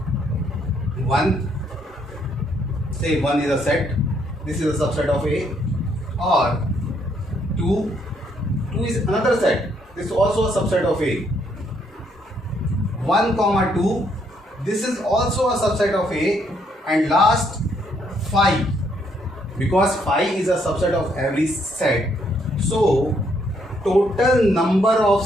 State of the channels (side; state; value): both; normal; correlation 0.71